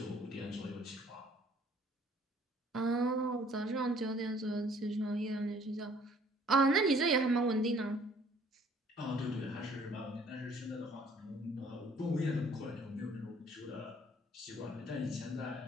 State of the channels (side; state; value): both; normal; correlation 0.58